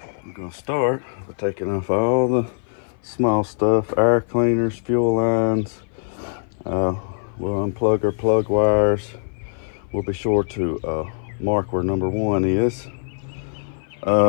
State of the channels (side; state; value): right; silent; 58 dB below the other